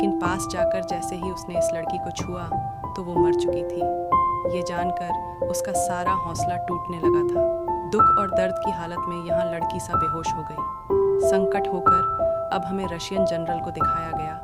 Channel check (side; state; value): both; identical; correlation 1.00